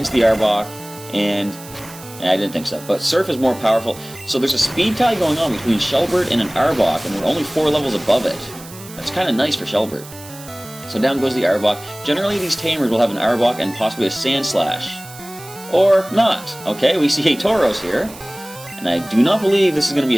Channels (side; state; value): right; noise; hiss, 17 dB below the sound